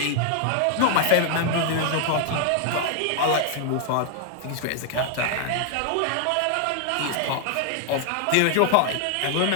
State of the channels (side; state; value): both; different; correlation 0.00